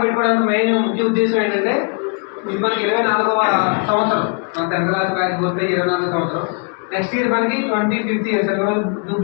పెట్టుకోవడానికి మెయిన్ ముఖ్య ఉద్దేశం ఏంటంటే ఇది మనకి 24వ సంవత్సరం మన 10th క్లాస్ బ్యాచ్ పూర్తి 24వ సంవత్సరం. నెక్స్ట్ ఇయర్ మనకి 25th ఇయర్ సిల్వర్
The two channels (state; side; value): quieter; right; 38.3 dB